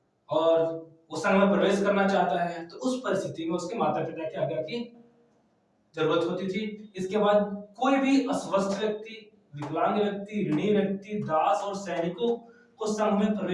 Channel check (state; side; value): identical; both; correlation 1.00